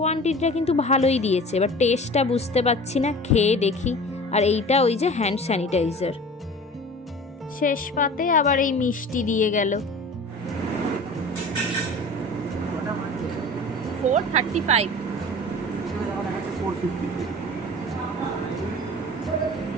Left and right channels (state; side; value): normal; both; correlation 0.40